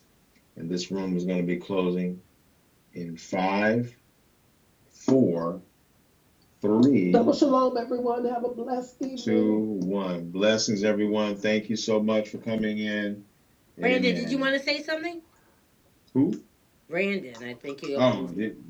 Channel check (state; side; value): identical; both; correlation 1.00